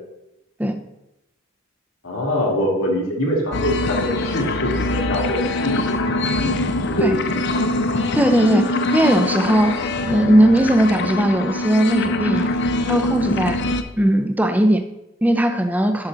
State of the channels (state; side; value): normal; both; correlation 0.64